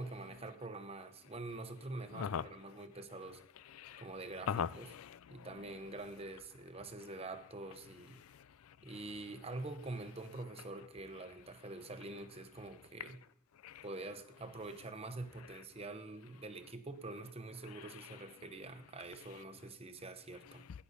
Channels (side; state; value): both; normal; correlation 0.30